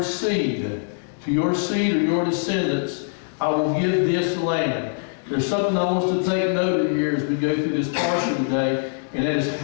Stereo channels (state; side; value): silent; right; digital silence